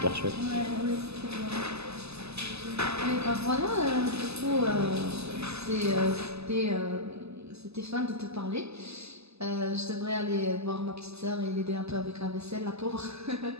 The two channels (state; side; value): late; left; 0.79 ms